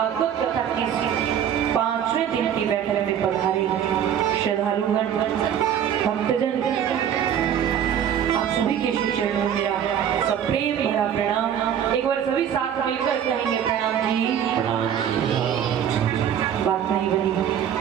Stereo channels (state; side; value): quieter; left; 9.2 dB